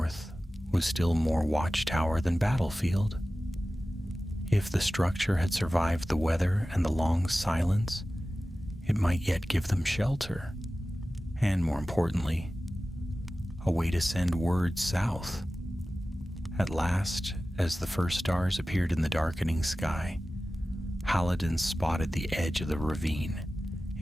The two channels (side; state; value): both; normal; correlation 0.96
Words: was still more watchtower than battlefield. If the structure had survived the weather and the long silence, it might yet give them shelter, and more importantly, a way to send word south. At last, as the first stars appeared in the darkening sky, Haladan spotted the edge of the ravine.